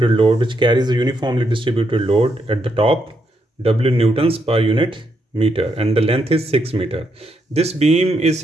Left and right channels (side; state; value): both; normal; correlation 0.79